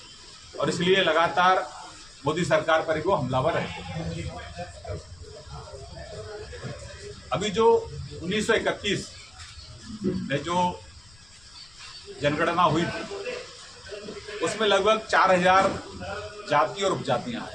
और इसलिए लगातार मोदी सरकार पर वो हमलावर रहते हैं। अभी जो 1931 में जो जनगणना हुई थी उसमें लगभग 4000 जाति और उपजातियां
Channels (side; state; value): left; noise; rumble, 27 dB below the sound